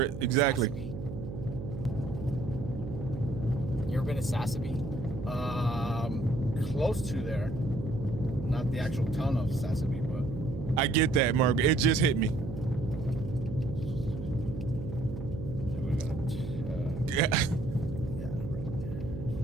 Exactly. You ever been to Sassabee? Close to there. Not the actual town of Sassabee, but. I get that, Margaret. It just hit me. Yeah.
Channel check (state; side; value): noise; right; hum, 8 dB below the sound